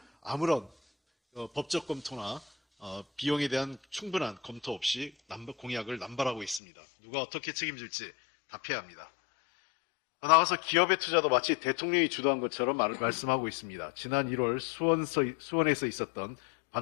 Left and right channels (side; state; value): right; drops out; at 6.6 s